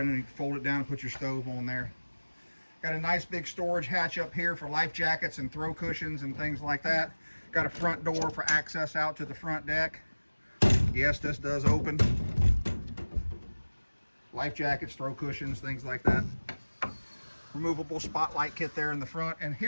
and then you fold it down and put your stove on there. Got a nice big storage hatch up here for life jackets and throw cushions and things like that. Got a front door for access out to the front deck. Yes, this does open. Life jackets, throw cushions, things like that. Removable spotlight kit there in the front. And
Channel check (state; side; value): inverted; both; correlation -1.00